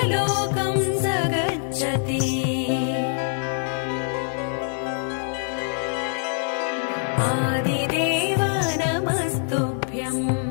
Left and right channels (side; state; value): right; silent; digital silence